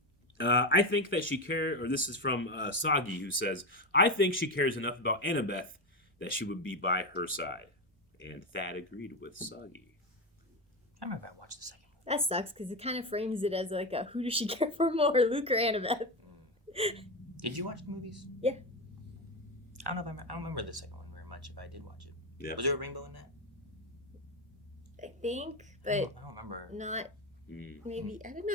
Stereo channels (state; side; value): normal; both; correlation 0.15